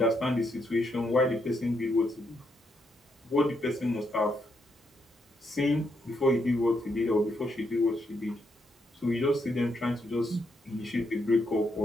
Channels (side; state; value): both; normal; correlation 0.78